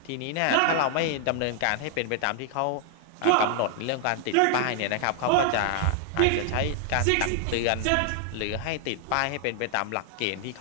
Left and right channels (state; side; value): different; both; correlation 0.00